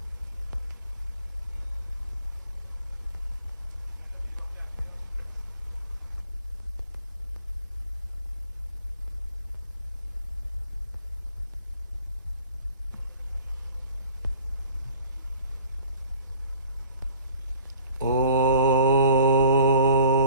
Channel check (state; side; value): inverted; both; correlation -0.49